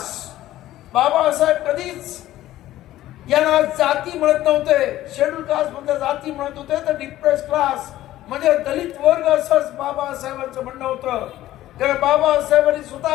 बाबासाहेब कधीच यांना जाती म्हणत नव्हते, शेड्यूल कास्ट म्हणजे जाती म्हणत होते तर डिप्रेस क्लास म्हणजे दलित वर्ग असंच बाबासाहेबांचं म्हणणं होतं. कारण बाबासाहेबांनी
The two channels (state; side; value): quieter; right; 14.5 dB